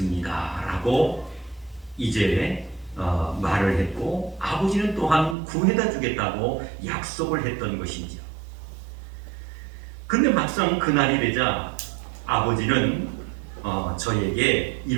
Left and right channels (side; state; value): left; drops out; at 5.4 s